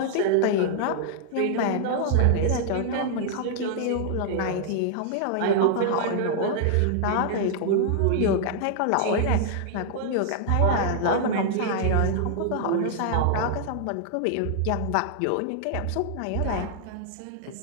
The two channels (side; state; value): both; different; correlation -0.01